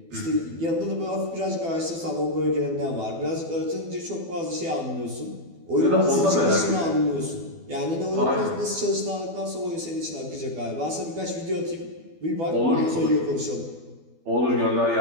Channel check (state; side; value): late; left; 12 ms